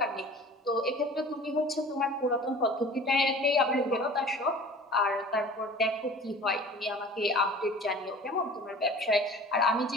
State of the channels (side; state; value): both; normal; correlation 0.43